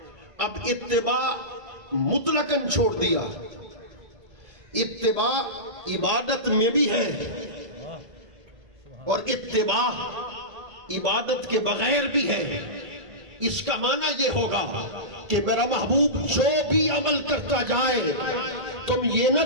اب اتباع مطلقاً چھوڑ دیا، اتباع عبادت میں بھی ہے، اور اتباع عبادت کے بغیر بھی ہے۔ اس کا معنی یہ ہوگا کہ میرا محبوب جو بھی عمل کرتا جائے، تم یہ نہ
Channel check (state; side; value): late; left; 1.8 ms